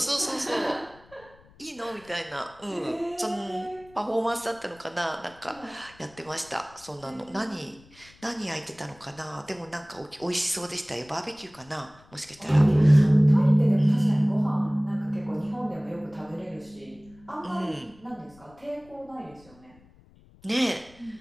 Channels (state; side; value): noise; left; rumble, 26 dB below the sound